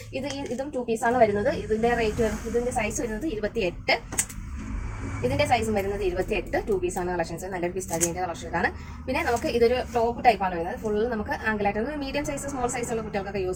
ഇതും 2 പീസ് ആണ് വരുന്നത്. ഇതിന്റെ സൈസ് വരുന്നത് 28. ഇതിന്റെ സൈസും വരുന്നത് 28. 2 പീസ് ആണ് കളക്ഷൻസ്. നല്ലൊരു പിസ്താജിന്റെ കളക്ഷനാണ്. പിന്നെ നമുക്ക് ഇതൊരു ടോപ്പ് ടൈപ്പാണ് വരുന്നത്. ഫുള്ള് നമുക്ക് ആംഗിളായിട്ട് മീഡിയം സൈസ്, സ്മോൾ സൈസുള്ള കുട്ടികൾക്കൊക്കെ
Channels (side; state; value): both; identical; correlation 1.00